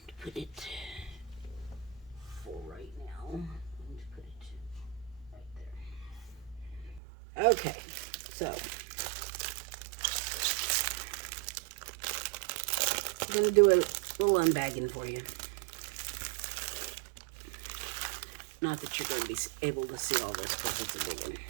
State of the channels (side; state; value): left; drops out; at 7.0 s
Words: for right now. I'm going to put it right there. Okay, so... I'm going to do little unbagging for you. Not that you're going to be able to see all this, but it's a big one.